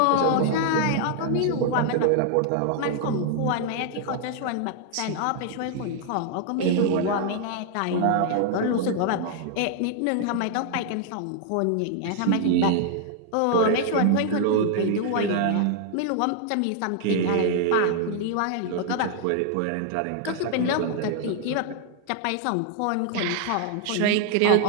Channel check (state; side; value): different; both; correlation 0.00